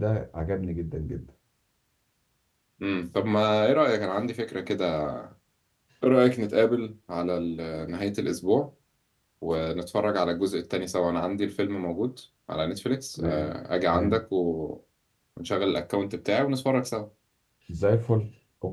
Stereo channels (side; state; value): both; identical; correlation 1.00